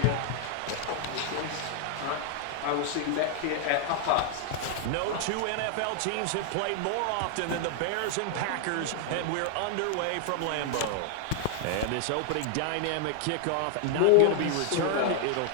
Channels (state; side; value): different; both; correlation 0.00